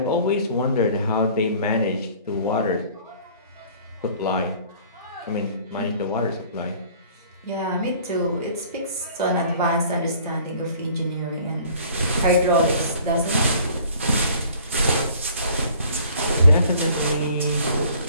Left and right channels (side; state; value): both; inverted; correlation -0.52